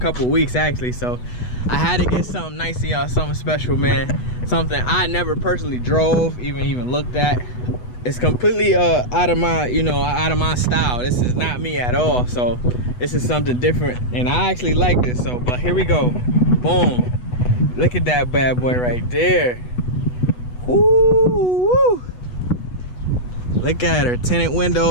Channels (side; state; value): right; late; 8.1 ms